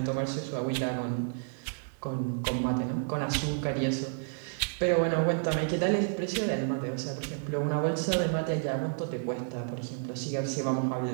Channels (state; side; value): silent; left; 56 dB below the other